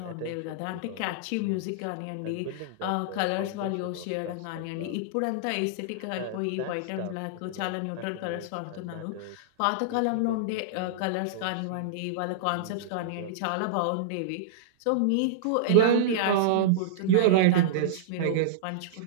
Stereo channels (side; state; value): both; different; correlation -0.02